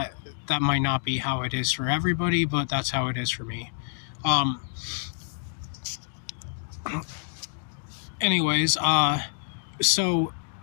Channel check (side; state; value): right; silent; digital silence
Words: that might not be how it is for everybody, but that's how it is for me. Anyways, so